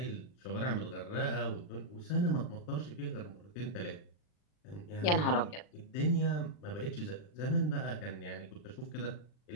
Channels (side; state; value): right; late; 40 ms